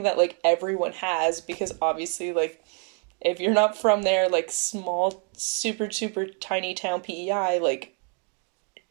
that like everyone has because obviously like if you're not from there like small super tiny town PEI like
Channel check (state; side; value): quieter; left; 39.8 dB